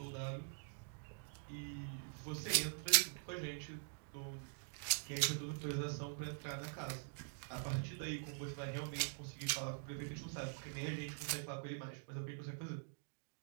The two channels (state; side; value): silent; left; digital silence